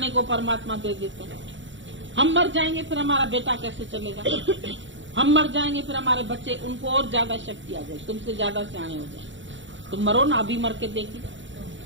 को परमात्मा दे देते हैं। हम मर जाएंगे फिर हमारा बेटा कैसे चलेगा? हम मर जाएंगे फिर हमारे बच्चे, उनको और ज्यादा शक्ति आ जाए, तुमसे ज्यादा सियाने हो जाए। तुम मरो ना, अभी मर के देखी,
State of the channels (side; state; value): left; late; 0.55 ms